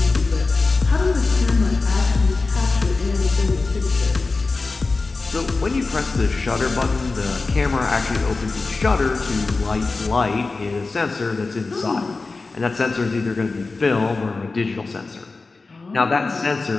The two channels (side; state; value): right; quieter; 3.8 dB